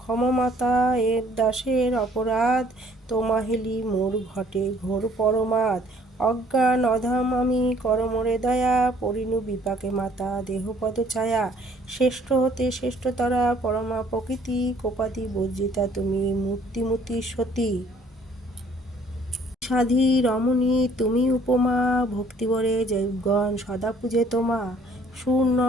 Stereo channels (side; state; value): both; normal; correlation 0.59